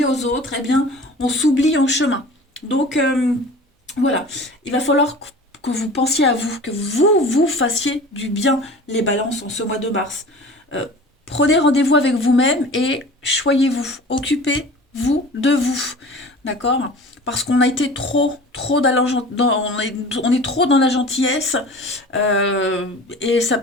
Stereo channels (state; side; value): normal; both; correlation 0.40